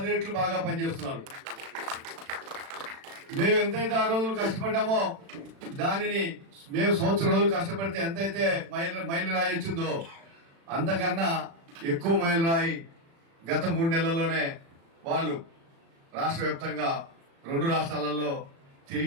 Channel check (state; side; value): late; left; 36 ms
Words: రెట్లు బాగా పనిచేస్తున్నారు. మేము ఎంతైతే ఆ రోజులు కష్టపడ్డామో దానిని మేము సంవత్సరం రోజులు కష్టపడితే ఎంతైతే మైలు రాయి వచ్చిందో అంతకన్నా ఎక్కువ మైలు రాయి గత 3 నెలల్లోనే వాళ్ళు రాష్ట్ర వ్యాప్తంగా 2 రాష్ట్రాలలో